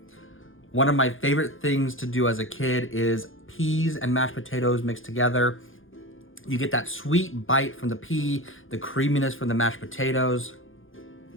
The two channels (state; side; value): late; right; 0.58 ms